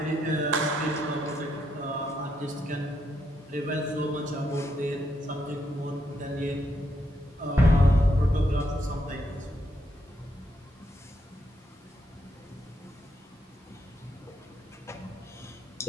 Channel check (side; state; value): both; normal; correlation 0.78